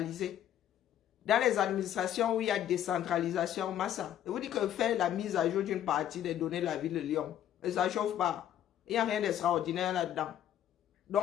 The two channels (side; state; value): right; quieter; 11.0 dB